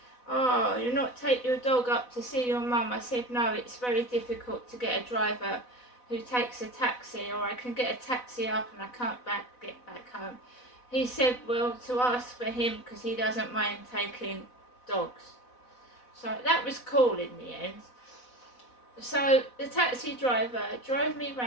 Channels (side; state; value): right; late; 4.0 ms